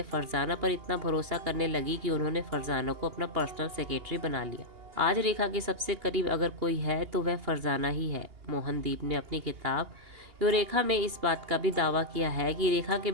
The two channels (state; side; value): late; left; 2.8 ms